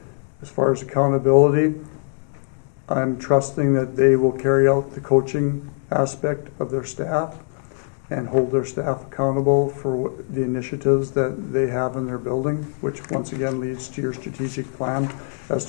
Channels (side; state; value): right; silent; digital silence